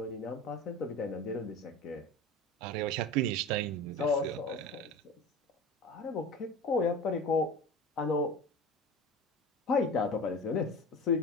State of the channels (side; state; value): both; normal; correlation 0.32